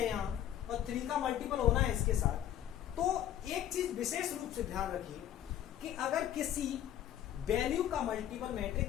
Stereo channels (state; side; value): quieter; right; 11.3 dB